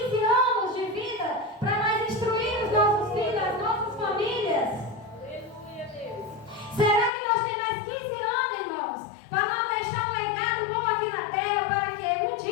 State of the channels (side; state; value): right; drops out; at 7.1 s